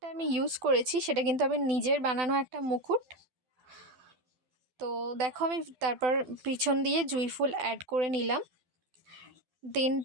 আমি ইউজ করেছি সেটা কিন্তু আমি নিজের বানানো একটা মুকুট। তো দেখো আমি তারপর পিছন দিয়ে জুঁই ফুল অ্যাড করে নিলাম, দেন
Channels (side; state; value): left; late; 12 ms